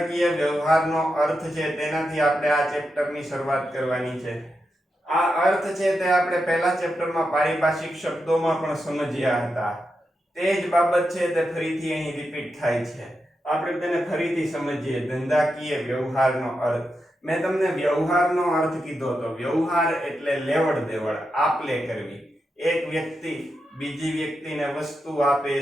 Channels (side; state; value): both; normal; correlation 0.87